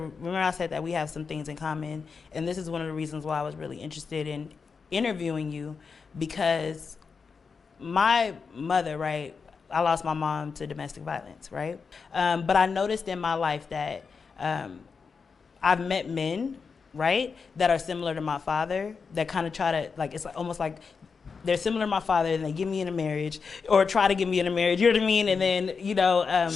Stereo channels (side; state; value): right; quieter; 5.3 dB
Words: I said that we have some things in common, and this is one of the reasons why I was really interested in interviewing you, because my mother, right, I lost my mom to domestic violence, right? But I noticed in my life that I've met men, right, that are similar to my father, that kind of try to, like, it's almost like they're similar to my father and they get me in a marriage or try to get me in a marriage, you know what I mean? And then, you know,